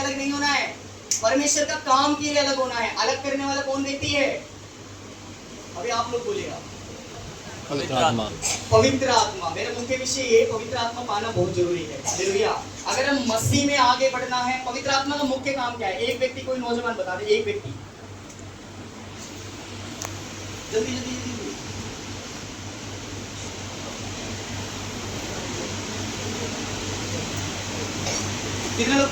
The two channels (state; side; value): identical; both; correlation 1.00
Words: नहीं होना है, परमेश्वर का काम के लिए अलग होना है। अलग करने वाला कौन व्यक्ति है? अभी आप लोग बोलेगा, पवित्र आत्मा। पवित्र आत्मा। मेरा मुख्य विषय ये, पवित्र आत्मा पाना बहुत जरूरी है। हालेलुया। अगर हम मसीह में आगे बढ़ना है, पवित्र आत्मा का मुख्य काम क्या है? एक व्यक्ति, कोई नौजवान बता दे, एक व्यक्ति, जल्दी जल्दी जल्दी। कितने लोग